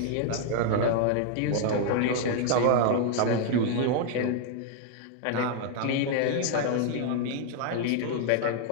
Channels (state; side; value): different; both; correlation 0.00